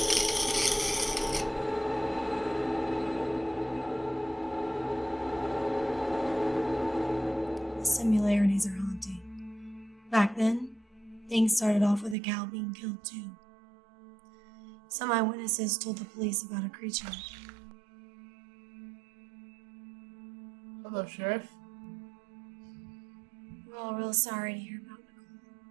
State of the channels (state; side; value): drops out; left; at 12.2 s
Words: Similarities are haunting. Back then, things started off with a cow being killed too. Some eyewitnesses told the police about a creature. Hello, Sheriff. We're all real sorry to hear about Nicole.